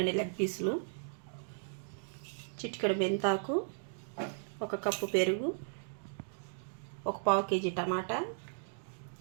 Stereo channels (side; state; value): left; silent; digital silence